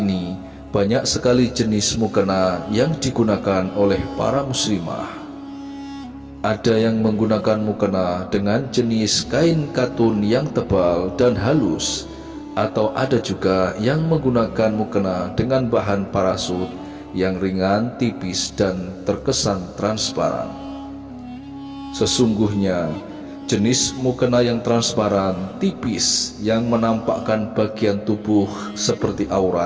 banyak sekali jenis mukena yang digunakan oleh para muslimah. Ada yang menggunakan mukena dengan jenis kain katun yang tebal dan halus, atau ada juga yang menggunakan mukena dengan bahan parasut yang ringan, tipis, dan terkesan transparan. Sesungguhnya jenis mukena yang transparan, tipis, yang menampakkan bagian tubuh seperti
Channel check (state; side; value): identical; both; correlation 1.00